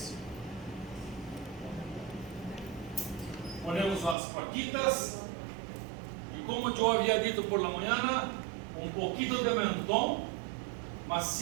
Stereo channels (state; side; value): drops out; left; at 4.2 s